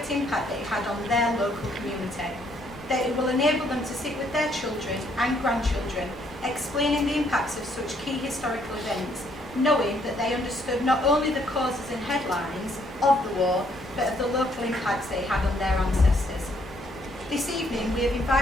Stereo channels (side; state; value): both; normal; correlation 0.69